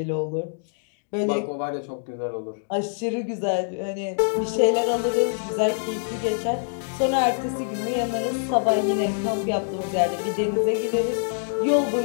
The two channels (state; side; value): silent; right; digital silence